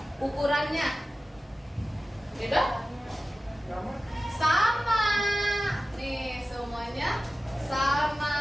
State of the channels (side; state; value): both; normal; correlation 0.95